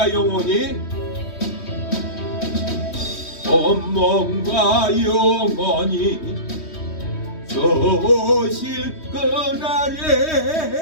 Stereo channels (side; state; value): right; late; 3.1 ms